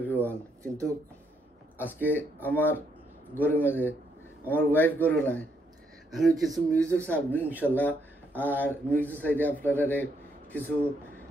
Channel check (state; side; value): normal; both; correlation 0.75